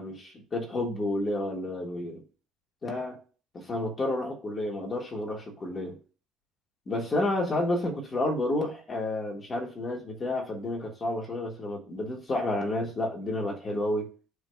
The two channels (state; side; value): normal; both; correlation 0.69